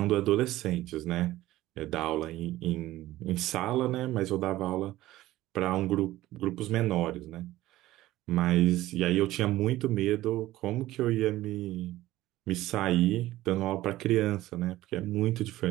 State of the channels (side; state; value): left; quieter; 15.9 dB